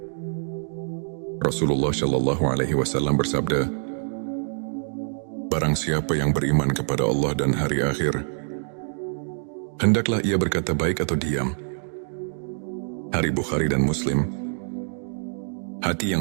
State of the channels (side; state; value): left; silent; digital silence